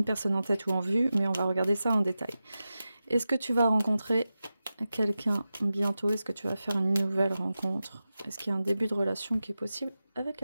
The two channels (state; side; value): inverted; both; correlation -0.93